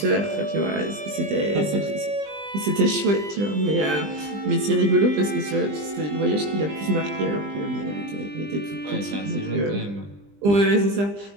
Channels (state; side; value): late; left; 20 ms